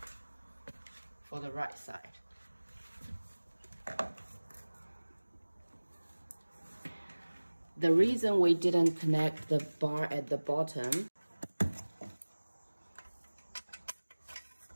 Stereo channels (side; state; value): both; inverted; correlation -1.00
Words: for the right side. The reason we didn't connect the bar at the bottom